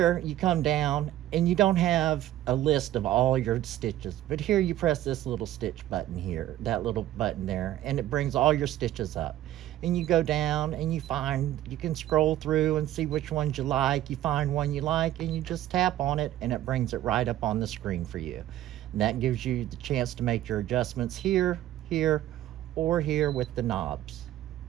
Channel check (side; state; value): left; quieter; 13.6 dB